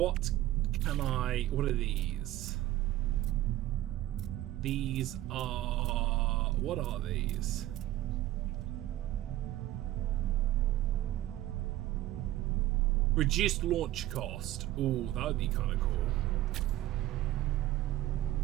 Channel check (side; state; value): left; quieter; 14.8 dB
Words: can I... What are these? These are... What are these? Reduced launch cost. Ooh, that would be kind of cool.